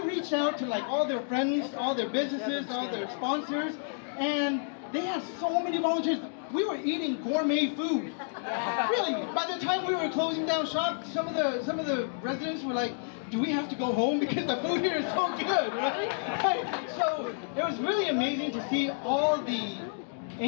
out to like all their friends, all their businesses, all their sponsors, and they had so many volunteers. We were eating gourmet food. Really, by the time we were closing down shop, some of the residents were like, do we have to go home because the food here is so good, right? So it was really amazing to see all the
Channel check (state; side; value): silent; right; digital silence